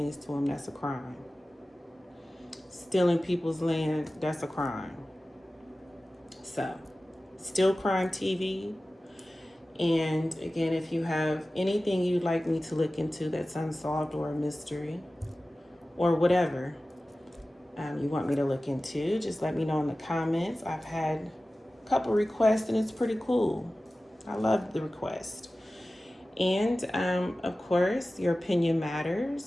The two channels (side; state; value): both; normal; correlation 0.96